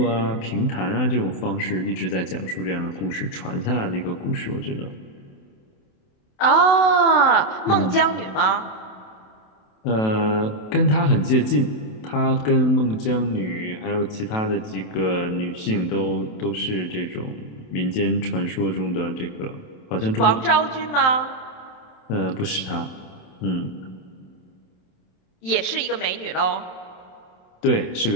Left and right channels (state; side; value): late; right; 27 ms